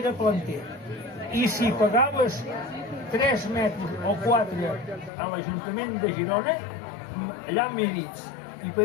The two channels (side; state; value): right; drops out; at 5.1 s